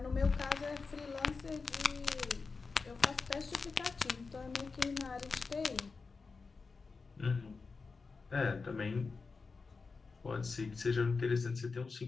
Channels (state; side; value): quieter; right; 4.5 dB